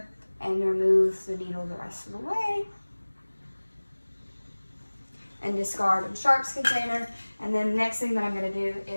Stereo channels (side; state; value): both; inverted; correlation -1.00